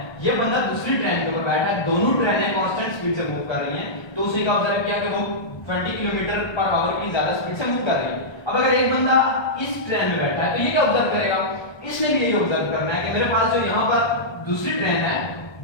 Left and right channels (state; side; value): late; right; 1.2 ms